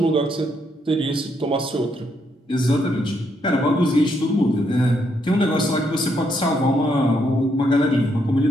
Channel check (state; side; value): normal; both; correlation 0.76